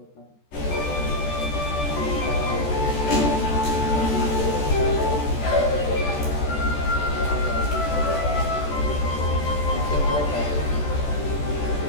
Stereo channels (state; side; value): late; right; 14 ms